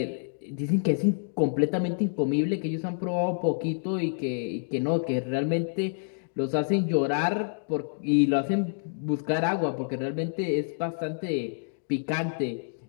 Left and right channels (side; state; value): right; silent; digital silence